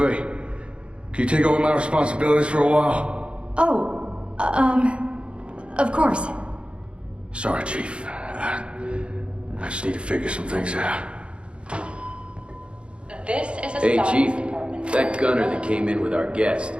you take over my responsibilities for a while? Oh, of course. Sorry, Chief. I just need to figure some things out. This is a Hey, science Chief. department. That gunner that came in with our guest,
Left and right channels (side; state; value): left; late; 0.057 ms